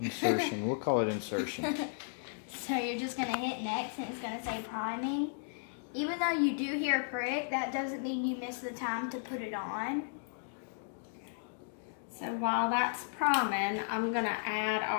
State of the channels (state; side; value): silent; right; digital silence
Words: We'll call it insertion. So you're just going to hit next and it's going to say priming. Even though you do hear a prick, that doesn't mean you missed the time to put it on. So while that's priming, I'm going to add